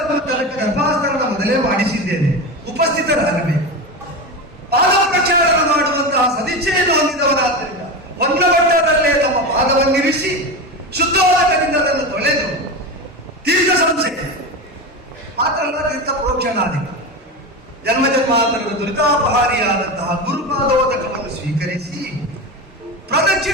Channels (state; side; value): normal; both; correlation 0.21